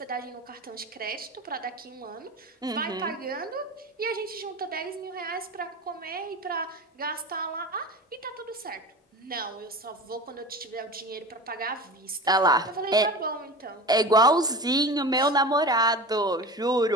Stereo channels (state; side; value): normal; both; correlation 0.32